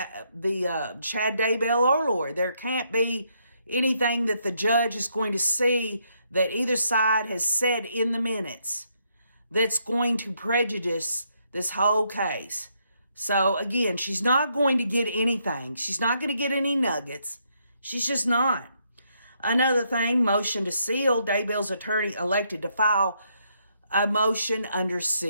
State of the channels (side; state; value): both; inverted; correlation -0.75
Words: Chad Daybell or Lori. There can't be anything that the judge is going to see that either side has said in the minutes that's going to prejudice this whole case. So again, she's not going to get anything. She's not going to get any nuggets. She's just not. Another thing, motion to seal. Daybell's attorney elected to file a motion under